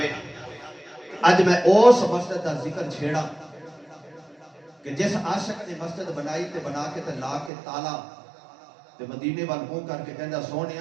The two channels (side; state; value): left; drops out; at 7.5 s